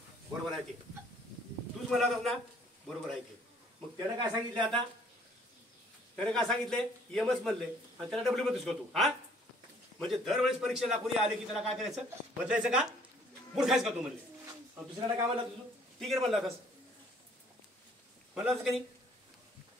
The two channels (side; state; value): both; normal; correlation 0.59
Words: बरोबर आहे ते, तूच म्हणला होतास ना, बरोबर आहे ते. मग त्यानं काय सांगितलं, आता त्याने काय सांगितले, यमच म्हणले आणि त्याला डब्ल्यू म्हणतोस का तू. हा म्हणजे दरवेळेस परीक्षेला कोणी आले की त्याला काय करायचं, बदलायचं का, मूर्खायचं का तू म्हणले. आणि दुसऱ्याला काय म्हणला तुझं, टिगेर म्हणला होतास, म्हणला होतास का नाही.